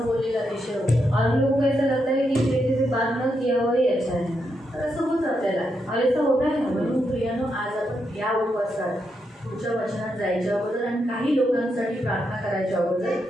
बोललेला अतिशय होतं. और हम लोगों को ऐसा लगता है कि इस व्यक्ति से बात न किया हुआ ही अच्छा है. तर असं होतं आपल्याला. और ऐसा होता है. म्हणून प्रियानो आज आपण या उपवासात पुढच्या वचनात जायच्या अगोदर आणि काही लोकांसाठी प्रार्थना करायच्या अगोदर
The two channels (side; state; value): both; normal; correlation 0.82